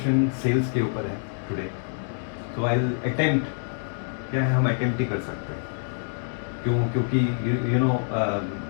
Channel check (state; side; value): silent; right; digital silence